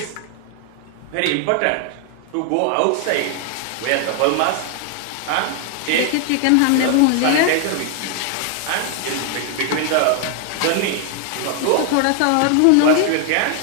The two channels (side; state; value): both; different; correlation 0.00